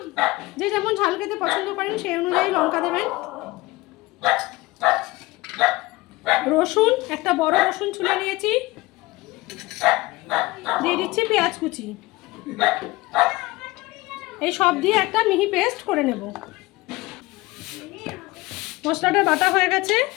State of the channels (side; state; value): right; quieter; 20.7 dB